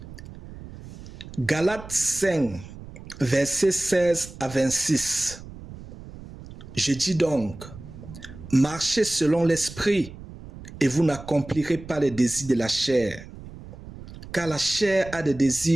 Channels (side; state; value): right; noise; rumble, 15 dB below the sound